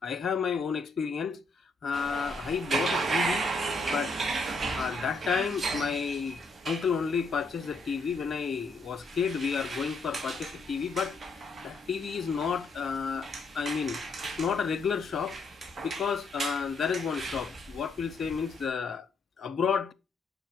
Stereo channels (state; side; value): quieter; right; 3.4 dB